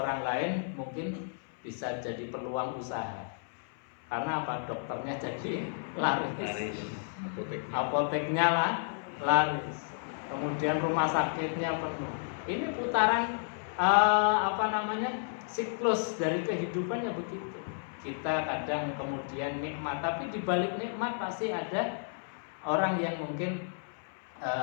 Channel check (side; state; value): right; silent; 56 dB below the other